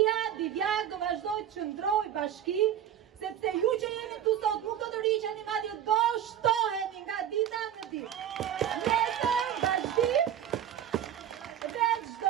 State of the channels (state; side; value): quieter; left; 10.2 dB